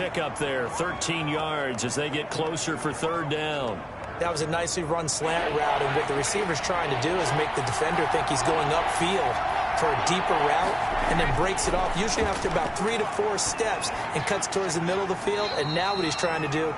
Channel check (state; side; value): identical; both; correlation 1.00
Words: there, 13 yards as they get closer for 3rd down. That was a nicely run slant route, and what the receiver's trying to do is make the defender think he's going upfield for a deeper route, and then breaks it off, usually after about 3 to 4 steps, and cuts towards the middle of the field. And now what he's trying to do